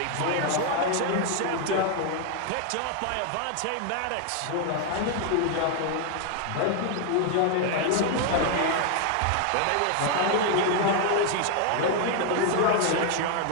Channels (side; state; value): both; different; correlation 0.00